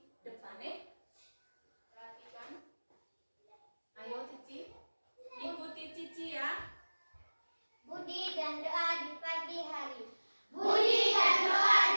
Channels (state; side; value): inverted; both; correlation -1.00